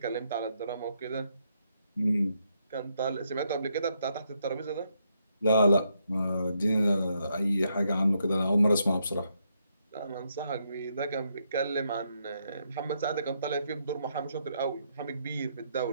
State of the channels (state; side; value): inverted; both; correlation -0.77